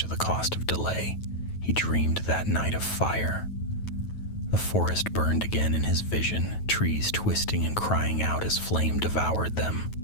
of the cost of delay. He dreamed that night of fire. The forest burned again in his vision, trees twisting and crying out as flame devoured them.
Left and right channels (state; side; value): late; right; 9.2 ms